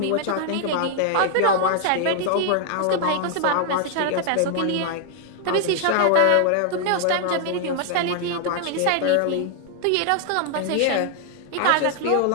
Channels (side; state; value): both; different; correlation 0.00